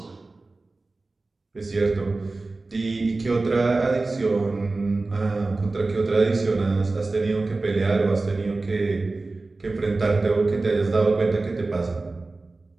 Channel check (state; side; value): quieter; left; 3.4 dB